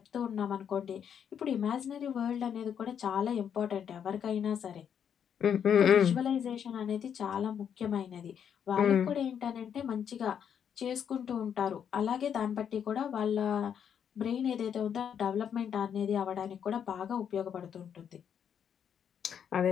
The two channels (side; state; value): right; quieter; 8.2 dB